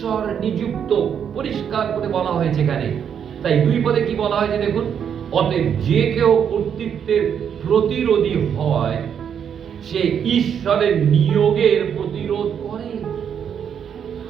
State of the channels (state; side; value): quieter; left; 8.1 dB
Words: নিযুক্ত, পরিষ্কার করে বলা হয়েছে এখানে। তাই 2 পদে কি বলা হয়েছে দেখুন, অতএব যে কেউ কর্তৃত্বের প্রতিরোধী হয় সে ঈশ্বরের নিয়োগের প্রতিরোধ করে,